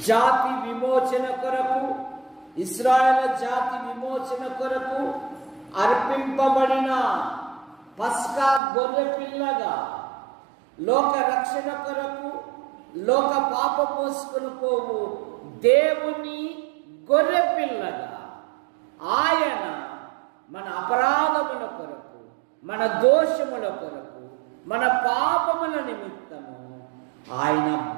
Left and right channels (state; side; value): drops out; left; at 8.6 s